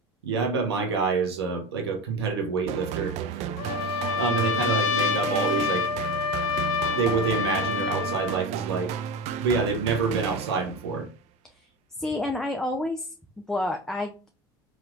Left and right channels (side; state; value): both; normal; correlation 0.24